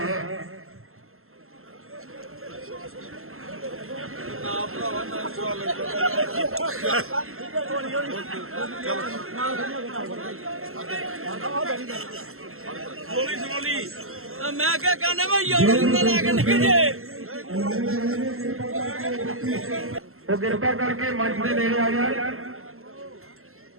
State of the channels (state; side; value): late; left; 0.62 ms